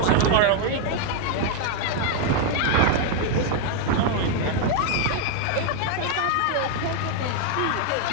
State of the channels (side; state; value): both; different; correlation 0.00